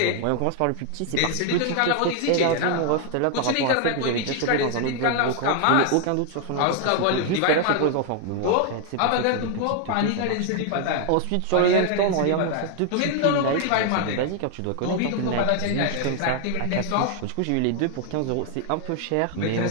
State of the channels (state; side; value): different; both; correlation 0.00